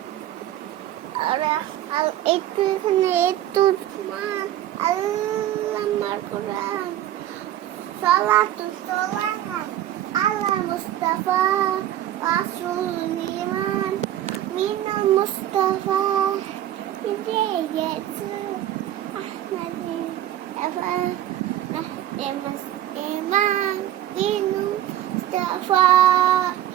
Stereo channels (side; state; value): left; quieter; 12.5 dB